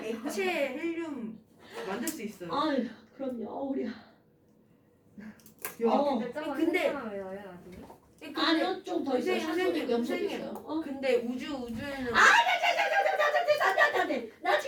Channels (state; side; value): identical; both; correlation 1.00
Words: 액체 헬륨 만들 수 있어요. 아유, 그럼요, 우리. 야, 근데 근데- 아니요, 좀 더 있어요. 선생님, 산소도 염소도 선생님. 있어요. 근데 우주에는 안돼. 나